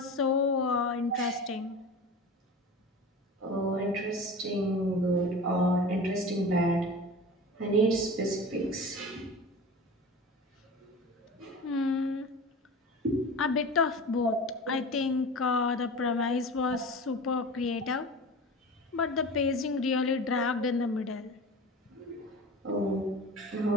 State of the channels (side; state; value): both; normal; correlation 0.34